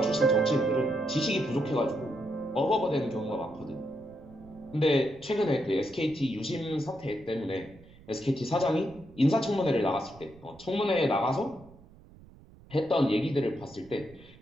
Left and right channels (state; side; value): noise; right; rumble, 23 dB below the sound